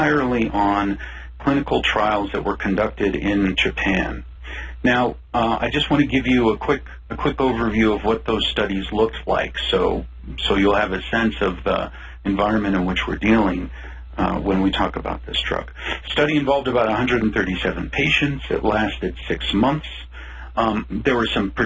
on clinical trials that were conducted in Japan. Now, I just want to give you a quick overview of what those studies looked like, so you'll have a sense of the environment in which we're dealing when we talk about this drug. The study involved about 137 patients. It lasted 6 months. There were some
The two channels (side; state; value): both; identical; correlation 1.00